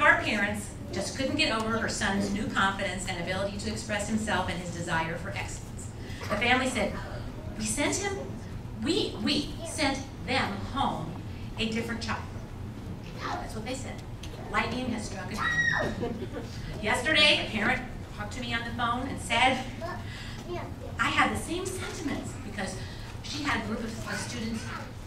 our parents just couldn't get over her son's new confidence and ability to express himself and his desire for excellence. The family said, we sent them home a different child. That's what they said. Lightning has struck again. Yesterday, a parent talked to me on the phone and said, I had the same sentiments because she had a group of students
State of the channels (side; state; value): both; identical; correlation 1.00